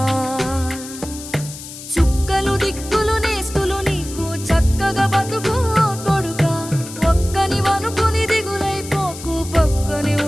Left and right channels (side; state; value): left; noise; hiss, 13 dB below the sound